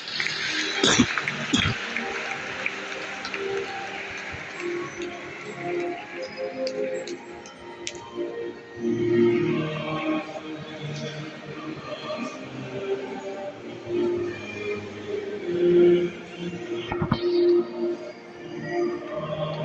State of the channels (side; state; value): both; identical; correlation 1.00